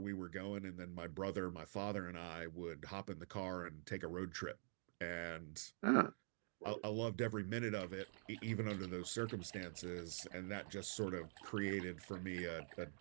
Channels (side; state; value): left; silent; digital silence